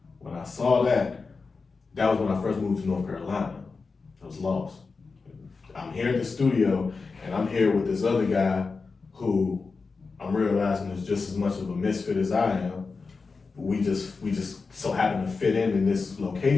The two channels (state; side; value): quieter; right; 4.4 dB